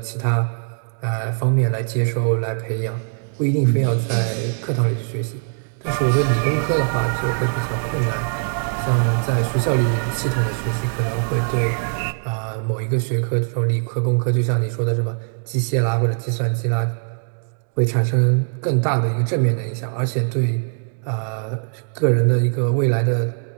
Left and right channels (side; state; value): left; silent; digital silence